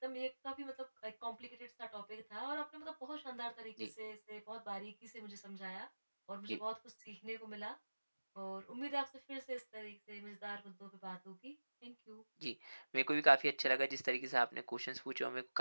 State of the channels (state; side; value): inverted; both; correlation -1.00